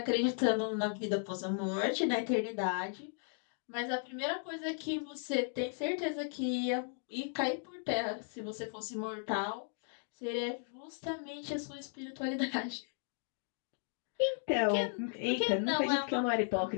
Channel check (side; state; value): right; silent; 54 dB below the other